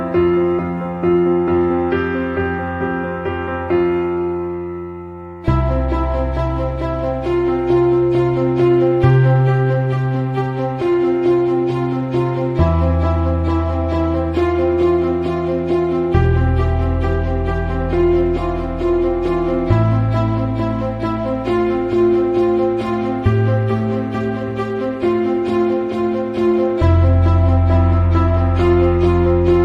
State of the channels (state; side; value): identical; both; correlation 1.00